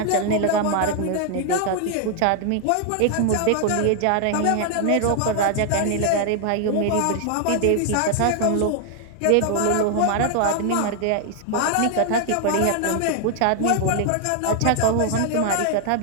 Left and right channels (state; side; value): different; both; correlation 0.00